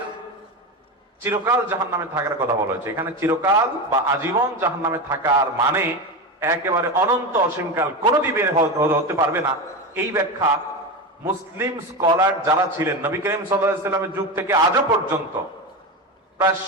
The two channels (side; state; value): both; normal; correlation 0.20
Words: চিরকাল জাহান্নামে থাকার কথা বলা হয়েছে। এখানে চিরকাল বা আজীবন জাহান্নামে থাকার মানে একেবারে অনন্ত অসীমকাল কোনোদিন বের হতে পারবে না। এই ব্যাখ্যা মুসলিম স্কলার যারা ছিলেন নবী করিম সাল্লাল্লাহু আলাইহি সাল্লামের যুগ থেকে আজও পর্যন্ত, প্রায়